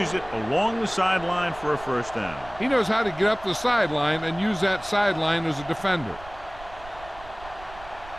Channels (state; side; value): noise; right; rumble, 18 dB below the sound